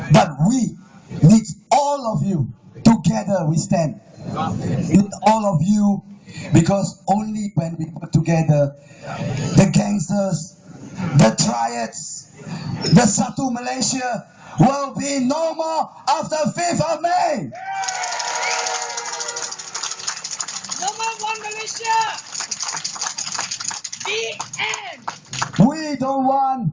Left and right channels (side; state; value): both; identical; correlation 1.00